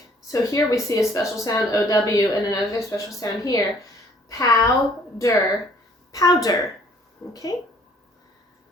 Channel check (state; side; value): normal; both; correlation 0.59